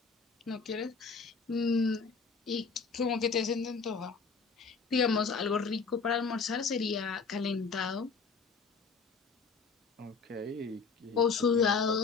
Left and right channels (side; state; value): right; quieter; 5.0 dB